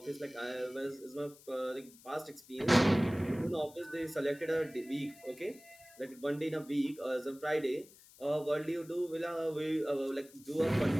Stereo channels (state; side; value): noise; left; hiss, 23 dB below the sound